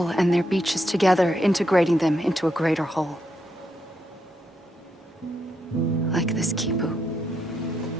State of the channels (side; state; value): both; normal; correlation 0.80